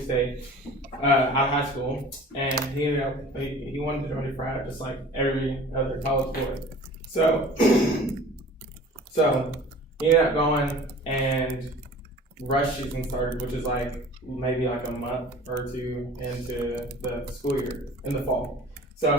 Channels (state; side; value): normal; both; correlation 0.44